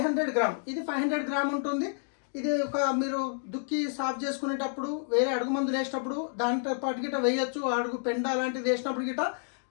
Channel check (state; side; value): silent; right; digital silence